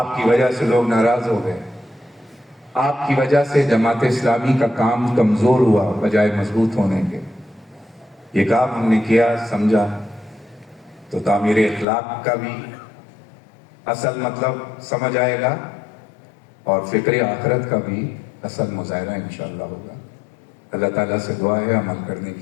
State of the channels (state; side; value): drops out; right; at 11.9 s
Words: کی وجہ سے لوگ ناراض ہو گئے، آپ کی وجہ سے جماعت اسلامی کا کام کمزور ہوا بجائے مضبوط ہونے کے۔ یہ کام ہم نے کیا، سمجھا، تو تعمیر اخلاق کا بھی اصل مطلب سمجھ آئے گا اور فکر آخرت کا بھی اصل مظاہرہ انشاءاللہ ہوگا۔ اللہ تعالیٰ سے دعا ہے عمل کرنے